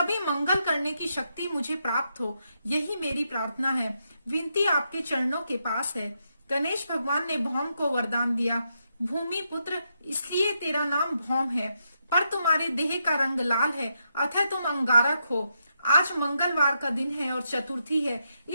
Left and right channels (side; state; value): both; inverted; correlation -0.82